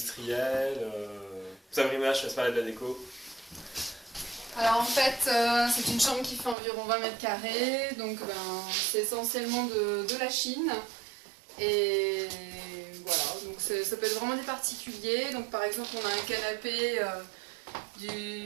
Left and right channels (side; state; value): left; drops out; at 6.6 s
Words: Sabrina, je te laisse parler de la déco. Alors en fait, c'est une chambre qui fait environ 20 mètres carrés, donc c'est essentiellement de la Chine. Et voilà, donc ça peut être vraiment des particuliers. Donc par exemple, on a un canapé